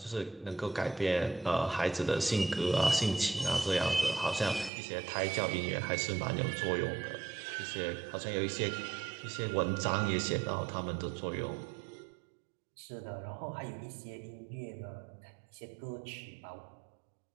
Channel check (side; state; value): left; drops out; at 4.7 s